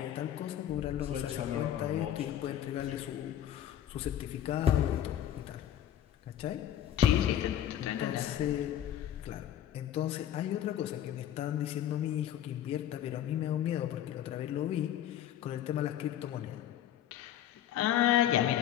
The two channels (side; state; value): right; quieter; 11.1 dB